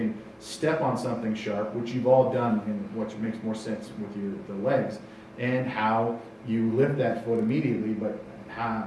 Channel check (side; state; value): both; identical; correlation 1.00